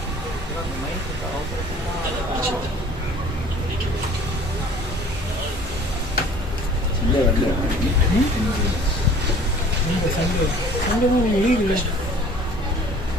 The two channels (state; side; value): normal; both; correlation 0.49